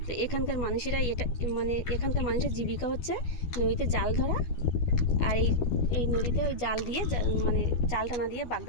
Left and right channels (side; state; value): right; late; 12 ms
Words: তো এখানকার মানুষেরা এটা মানে এখানকার মানুষের জীবিকা হচ্ছে নদীতে জাল ধরা। আর এই এই নদীতে ওই জাল দিয়ে মানে জাল টানা দিয়ে